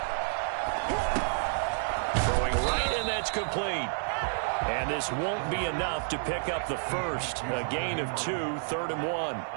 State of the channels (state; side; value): silent; left; digital silence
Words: Throwing right, and that's complete. And this won't be enough to pick up the first. A gain of 2, 3rd and 1.